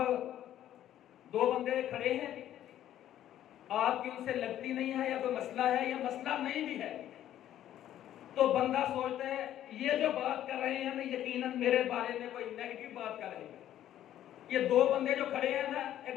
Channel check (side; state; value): right; quieter; 11.9 dB